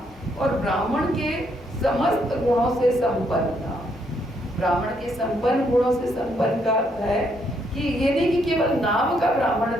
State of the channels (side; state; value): both; normal; correlation 0.73